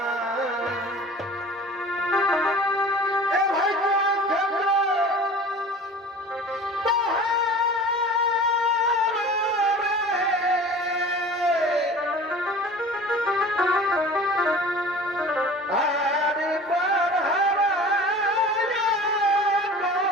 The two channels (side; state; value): both; normal; correlation 0.41